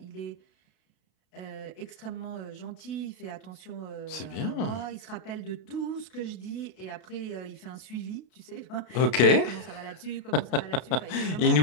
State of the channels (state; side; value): late; right; 32 ms